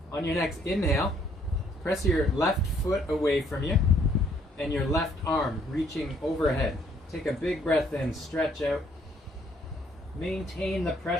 On your next inhale, press your left foot away from you and your left arm reaching overhead. Take a big breath in, stretch out. Maintain the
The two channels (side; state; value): both; normal; correlation 0.65